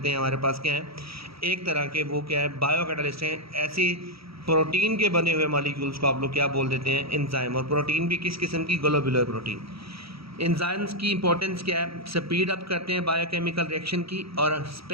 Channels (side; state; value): left; late; 0.76 ms